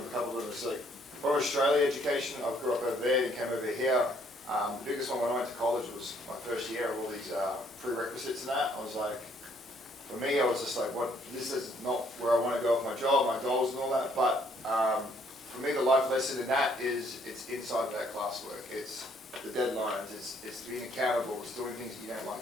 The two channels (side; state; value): both; normal; correlation 0.66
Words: a couple of them. It's like, for Australia education, I grew up over there and came over here. The biggest one when I went to college was my first year of all these prerequisites and that. I was like, for me, I was just like, what? This is not where I want to go with my job, my goals and all that. But for me, the life lesson in that is it's inside of that classwork. It's the deadlines. It's being accountable. It's doing things you don't like